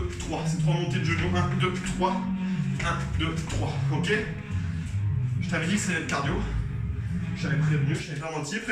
3. C'est 3 montées de genoux. 1, 2, 3. 1, 2, 3. Ok? Je t'avais dit que c'était le cardio. Je t'avais prévenu, je t'avais pas menti.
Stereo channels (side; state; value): both; identical; correlation 1.00